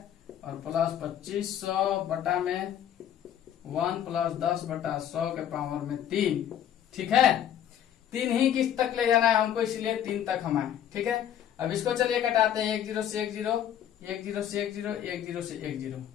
और प्लस 2500 बटा में 1 प्लस 10 बटा 100 के पावर में 3। ठीक है, 3 ही किस्त तक ले जाना है हमको, इसीलिए 3 तक हम आए। ठीक है, अब इसको चलिए कटाते हैं, 1 0 से 1 0, 1 0 से 1 0, 1 0 से 1 0।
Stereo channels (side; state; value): right; quieter; 10.2 dB